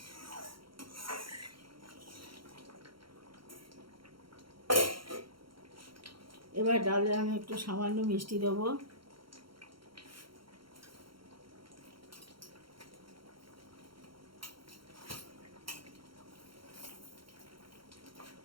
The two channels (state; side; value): late; left; 0.73 ms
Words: এবার ডালে আমি একটু সামান্য মিষ্টি দেবো।